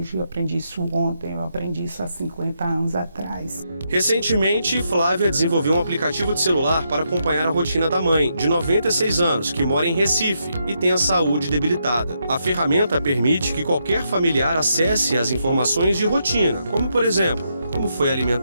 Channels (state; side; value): inverted; both; correlation -0.80